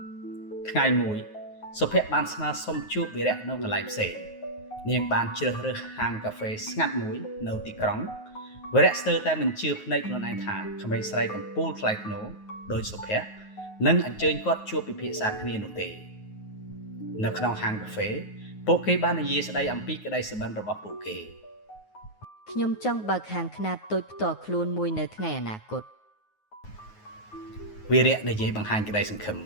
ថ្ងៃមួយសុភ័ក្របានស្នើសុំជួបវីរៈនៅកន្លែងផ្សេងនាងបានជ្រើសរើសហាងកាហ្វេស្ងាត់មួយនៅទីក្រុងវីរៈស្ទើរតែមិនជឿភ្នែកខ្លួនឯងថាក្មេងស្រីកំពូលថ្លៃថ្នូរដោយសុភ័ក្រនឹងអញ្ជើញគាត់ជួបពិភាក្សាគ្នានោះទេនៅក្នុងហាងកាហ្វេពួកគេបាននិយាយស្ដីអំពីក្តីសុបិនរបស់ពួកគេខ្ញុំចង់បើកហាងខ្នាតតូចផ្ទាល់ខ្លួនមួយនៅថ្ងៃអនាគតវីរៈនិយាយបង្ហាញក្តីសង្ឃឹម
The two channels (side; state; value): right; late; 9.4 ms